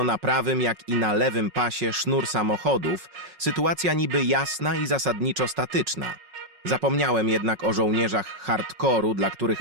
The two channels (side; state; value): left; late; 5.4 ms